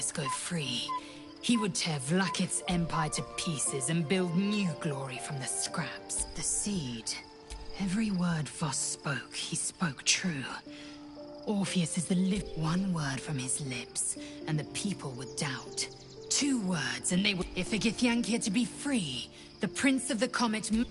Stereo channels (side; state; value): both; identical; correlation 1.00